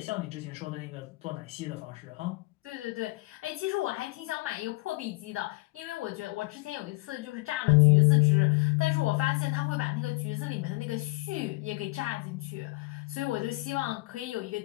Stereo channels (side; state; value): right; quieter; 23.5 dB